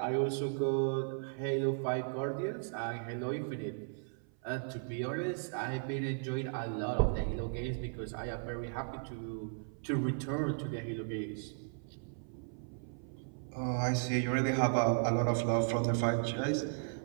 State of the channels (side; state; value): left; silent; 54 dB below the other